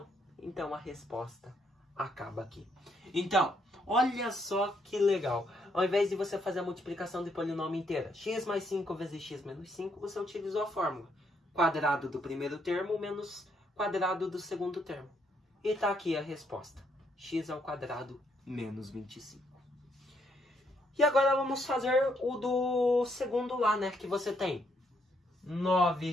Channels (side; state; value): both; normal; correlation 0.73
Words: Então a resposta acaba aqui. Então, olha só que legal. Ao invés de você fazer a multiplicação de polinômio inteira, x mais 5 vezes x menos 5, você utilizou a fórmula. Quadrado do primeiro termo menos quadrado do segundo termo. E tá aqui a resposta. X ao quadrado menos 25. E agora vamos fazer o do segundo lá, né? Que você tem